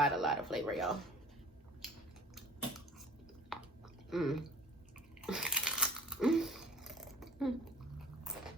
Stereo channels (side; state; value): both; normal; correlation 0.46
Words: of flavor, y'all. Mm. Mm.